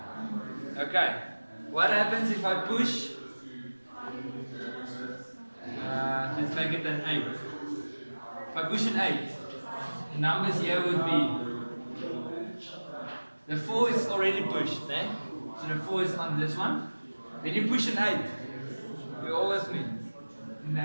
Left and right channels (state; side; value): inverted; both; correlation -1.00